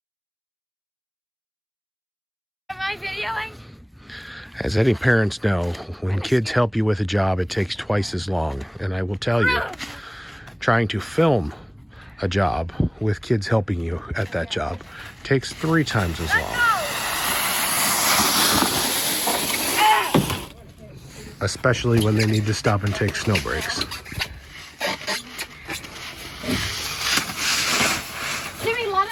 Am I videoing? as any parents know, when kids help you with a job, it takes twice as long. And I will tell you, trying to film a job with kids helping you at that job takes 3 times as long. Especially when they need to stop and take snow breaks. Jimmy,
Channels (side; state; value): both; identical; correlation 1.00